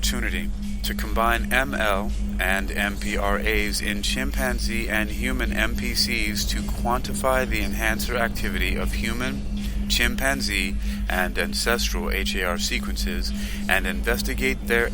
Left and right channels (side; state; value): both; identical; correlation 1.00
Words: to combine ML and MPRAs in chimpanzee and human MPCs to quantify the enhancer activity of human, chimpanzee and ancestral HAR sequences and investigate their